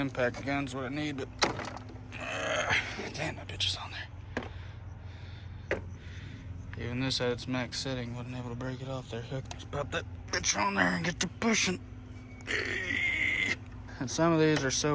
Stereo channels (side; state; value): both; identical; correlation 1.00